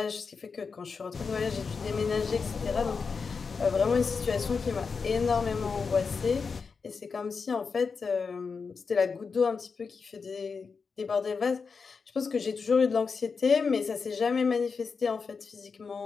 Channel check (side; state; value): right; quieter; 5.2 dB